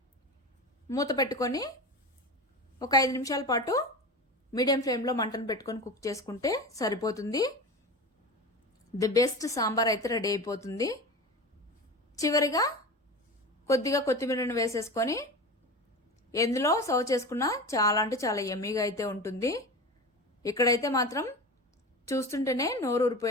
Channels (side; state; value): both; normal; correlation 0.29